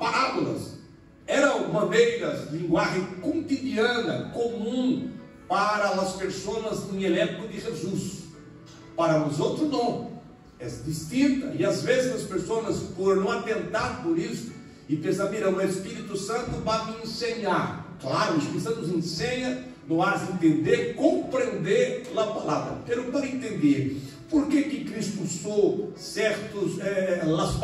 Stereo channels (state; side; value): identical; both; correlation 1.00